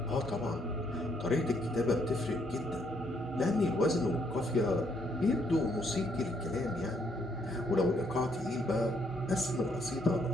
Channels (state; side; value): normal; both; correlation 0.71